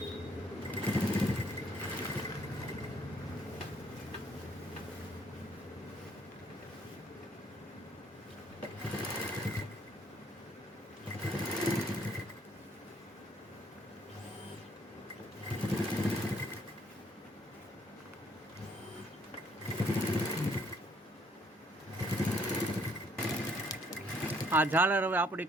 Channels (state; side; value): normal; both; correlation 0.65